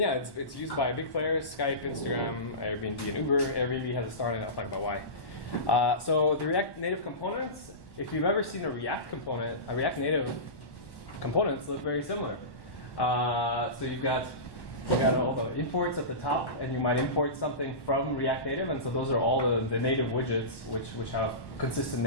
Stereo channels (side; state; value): right; late; 1.1 ms